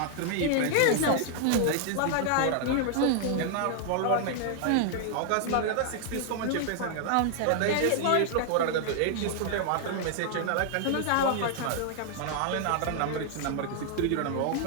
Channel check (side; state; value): both; different; correlation 0.00